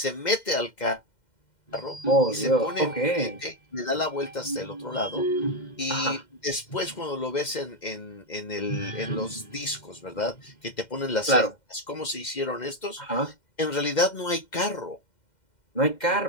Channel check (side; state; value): right; late; 2.1 ms